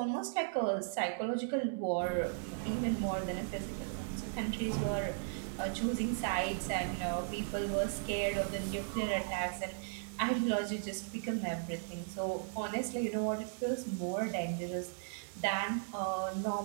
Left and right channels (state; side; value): silent; left; digital silence